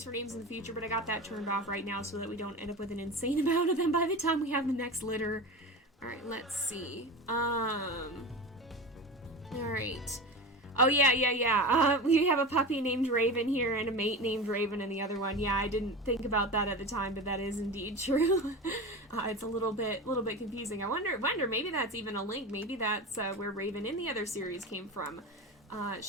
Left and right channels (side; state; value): both; normal; correlation 0.28